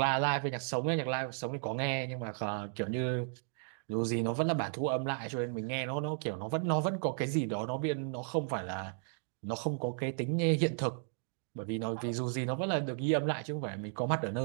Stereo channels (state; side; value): silent; left; 55 dB below the other